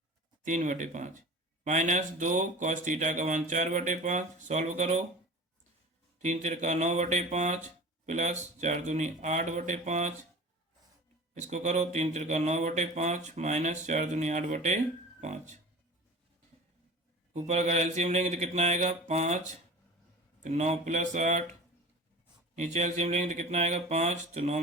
माइनस 2 कॉस थीटा का मान 4/5, सॉल्व करो, 3 तिरका 9/5 प्लस 4 दूनी 8/5, इसको करो 3 तिरका 9/5 माइनस 4 दूनी 8/5, ऊपर अगर एलसीएम लेंगे तो कितना आएगा 5, तो 9 प्लस 8, नीचे एलसीएम लेंगे तो कितना आएगा 5, तो 9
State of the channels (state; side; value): normal; both; correlation 0.38